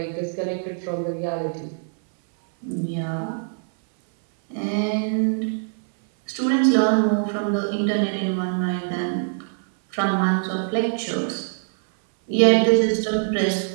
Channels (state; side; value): silent; left; 60 dB below the other